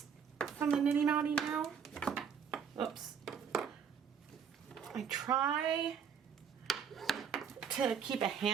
from the niddy noddy now. Oops. I try to keep a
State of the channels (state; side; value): quieter; left; 7.3 dB